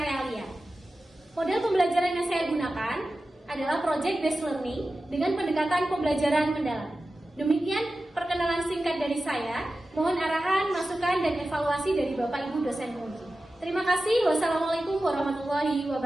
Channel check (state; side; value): normal; both; correlation 0.94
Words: Model pembelajaran yang saya gunakan adalah Project Based Learning dengan pendekatan pembelajaran mendalam. Demikian perkenalan singkat dari saya. Mohon arahan, masukan, dan evaluasi dari Bapak Ibu dosen penguji. Terima kasih. Wassalamualaikum warahmatullahi